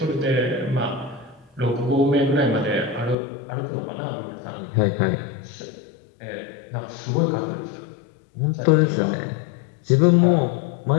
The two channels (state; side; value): drops out; right; at 3.2 s